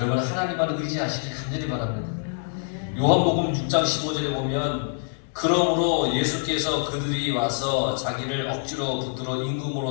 하나님만 의지하시길 간절히 바랍니다. 요한복음 6장 15절에 보면 그러므로 예수께서 그들이 와서 자기를 억지로 붙들어 임금으로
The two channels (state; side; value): silent; right; digital silence